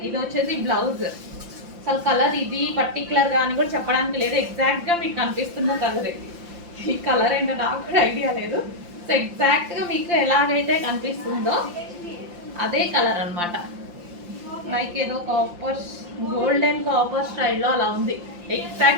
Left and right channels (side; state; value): left; late; 5.8 ms